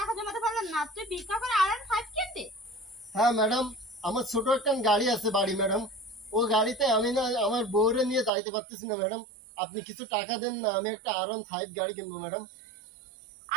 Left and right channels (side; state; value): left; drops out; at 8.3 s